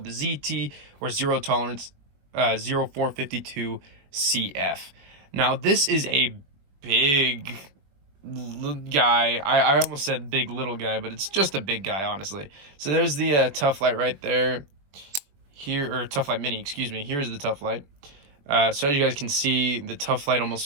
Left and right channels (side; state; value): left; late; 21 ms